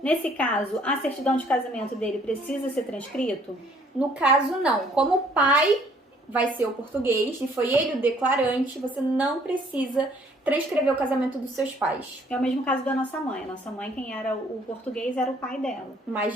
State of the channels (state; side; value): normal; both; correlation 0.61